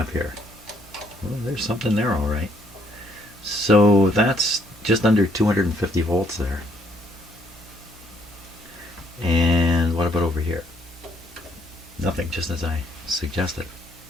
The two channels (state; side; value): normal; both; correlation 0.67